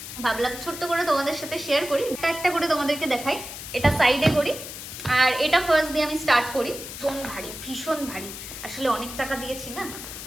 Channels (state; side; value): noise; left; hiss, 10 dB below the sound